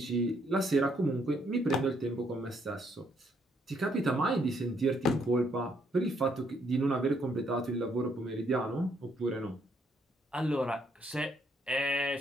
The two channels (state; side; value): normal; both; correlation 0.71